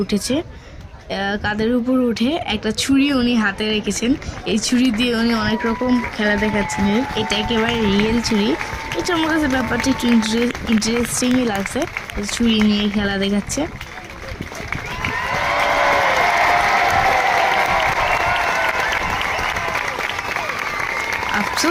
উঠেছে। কাঁধের উপর উঠে একটা ছুরি উনি হাতে রেখেছেন। এই ছুরি দিয়ে উনি অনেক রকম খেলা দেখাচ্ছিলেন। এটা একেবারে রিয়েল ছুরি। এটা আমার কাছে ব্যাপারটা একটু ইন্টারেস্টিংই লাগছে, ছুরি নিয়ে খেলা দেখাচ্ছে।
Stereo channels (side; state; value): both; identical; correlation 1.00